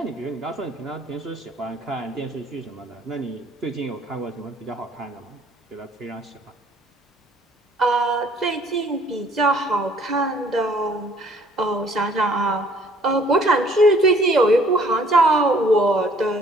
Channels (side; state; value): both; normal; correlation 0.59